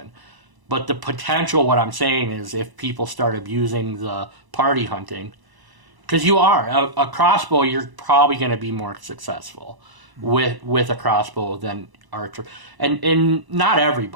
But the potential, what I'm saying is, if people start abusing the party hunting, because you are a crossbow. You're probably going to be more successful with a crossbow than archer, and not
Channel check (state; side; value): late; left; 1.0 ms